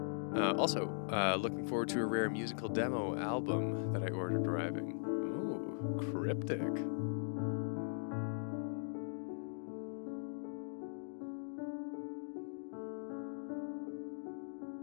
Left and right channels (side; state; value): right; silent; digital silence